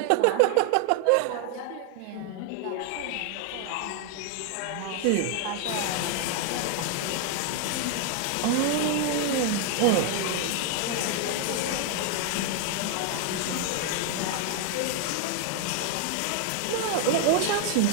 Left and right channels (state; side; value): different; both; correlation 0.00